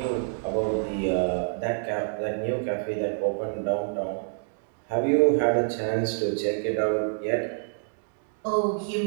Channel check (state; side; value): silent; left; digital silence